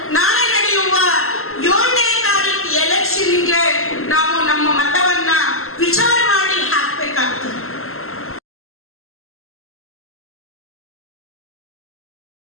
ನಾಳೆ ನಡೆಯುವ 7ನೇ ತಾರೀಕು ಎಲೆಕ್ಷನ್ಗೆ ನಾವು ನಮ್ಮ ಮತವನ್ನ ವಿಚಾರ ಮಾಡಿ ಹಾಕ್ಬೇಕಾಗ್ತದೆ.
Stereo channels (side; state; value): right; late; 0.62 ms